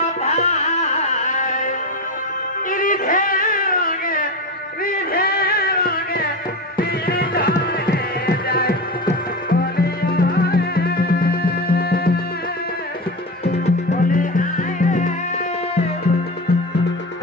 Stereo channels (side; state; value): both; normal; correlation 0.22